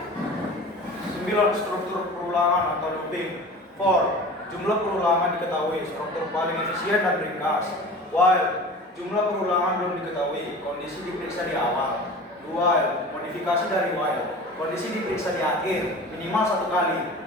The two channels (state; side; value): normal; both; correlation 0.38